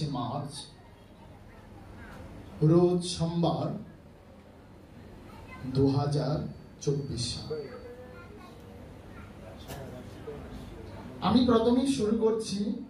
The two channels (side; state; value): both; identical; correlation 1.00